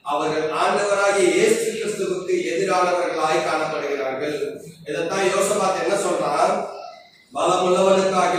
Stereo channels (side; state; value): both; identical; correlation 1.00